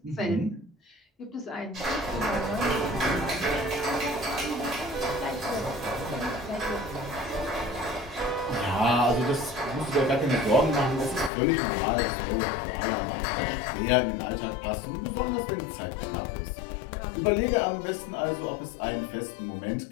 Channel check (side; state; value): right; drops out; at 11.3 s